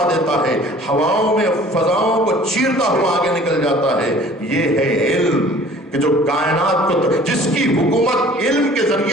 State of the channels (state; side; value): normal; both; correlation 0.50